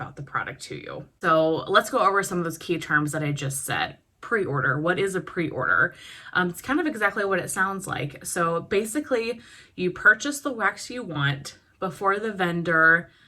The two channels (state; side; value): identical; both; correlation 1.00